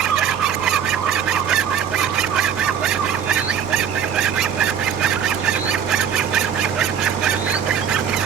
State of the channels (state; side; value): quieter; left; 8.1 dB